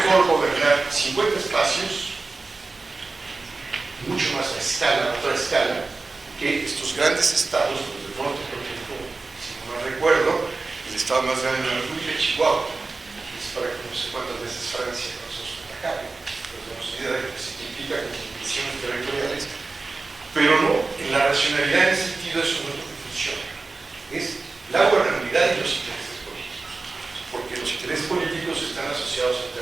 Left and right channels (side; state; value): left; quieter; 3.7 dB